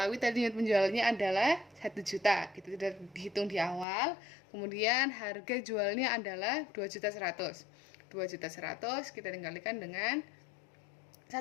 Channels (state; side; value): drops out; right; at 3.9 s